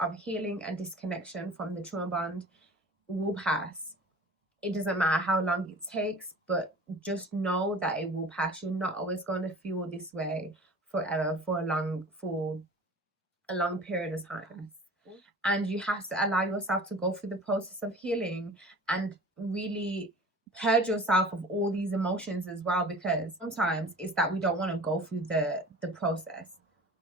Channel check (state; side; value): normal; both; correlation 0.42